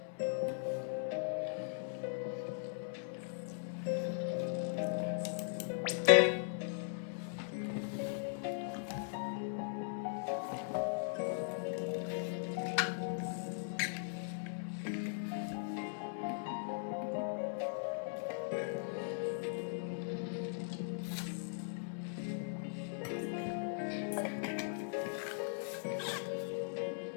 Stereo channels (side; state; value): right; silent; 52 dB below the other